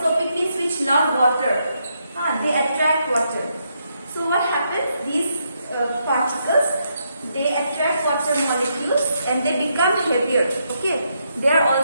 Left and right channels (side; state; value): both; inverted; correlation -0.78